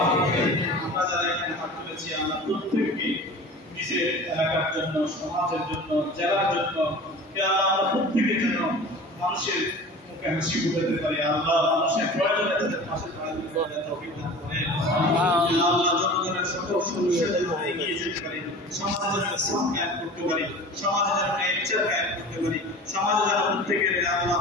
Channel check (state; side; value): normal; both; correlation 0.39